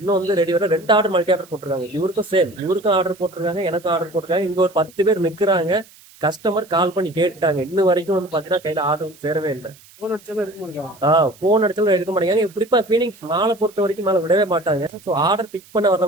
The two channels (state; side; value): noise; right; hiss, 25 dB below the sound